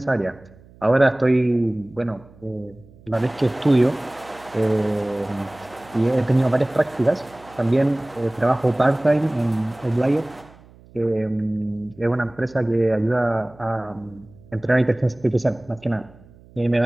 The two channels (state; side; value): noise; right; hum, 25 dB below the sound